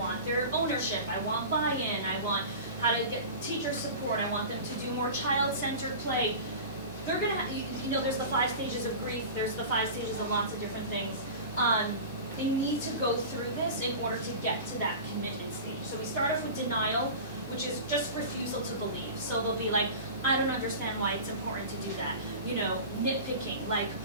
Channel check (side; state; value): both; inverted; correlation -0.33